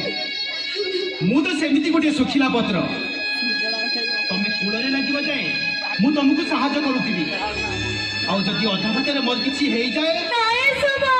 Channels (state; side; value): identical; both; correlation 1.00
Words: मु तो सेमिति गोटे सुखिला पत्र तमे कोड़े लगिबा जाए मु तुमको सहायता करूथीबी आउ जदि अधा बाटर मोर किछि हेई जाए नहीं सुबह